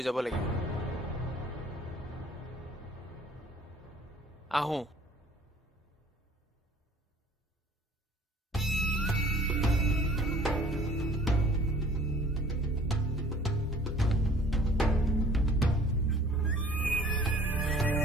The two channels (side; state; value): both; normal; correlation 0.52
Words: যাব লাগিব আহো